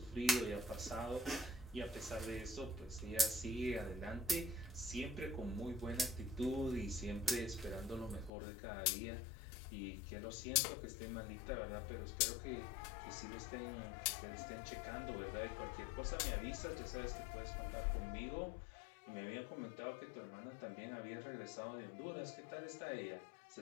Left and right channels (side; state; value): right; drops out; at 8.3 s